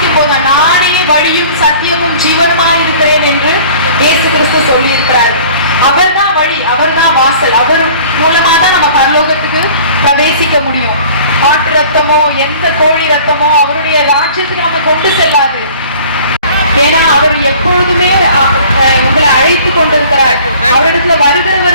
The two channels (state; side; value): inverted; both; correlation -0.48